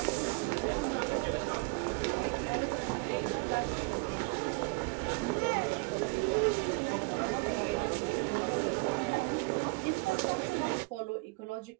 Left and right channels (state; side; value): quieter; left; 31.2 dB